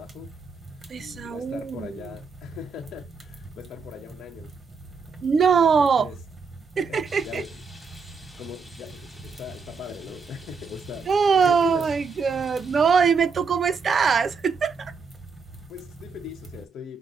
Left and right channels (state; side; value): quieter; left; 5.2 dB